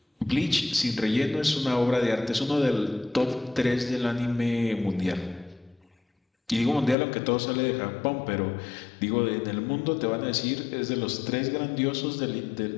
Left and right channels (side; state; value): right; drops out; at 7.0 s